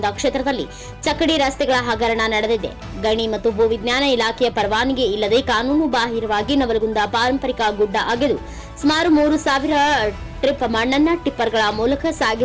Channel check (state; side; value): identical; both; correlation 1.00